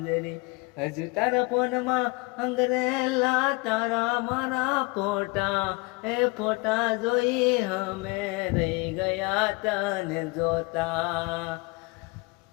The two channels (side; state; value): right; quieter; 26.9 dB